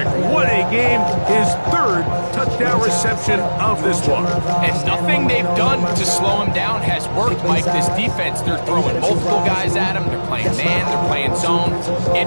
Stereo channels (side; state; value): both; inverted; correlation -1.00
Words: What a game. His 3rd touchdown reception of this one. And nothing they've done to slow him down has worked, Mike. This defense, they're throwing multiple guys at him. They're playing man, they're playing zone. It